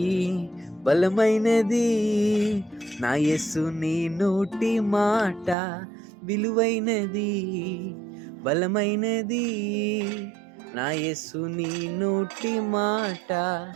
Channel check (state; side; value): drops out; left; at 5.6 s